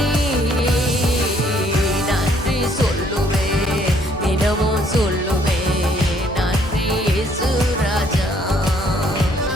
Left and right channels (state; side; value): normal; both; correlation 0.65